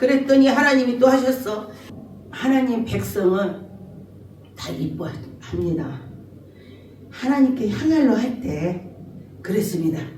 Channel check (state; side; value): identical; both; correlation 1.00